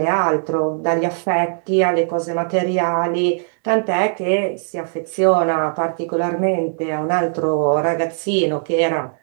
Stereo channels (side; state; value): left; silent; 66 dB below the other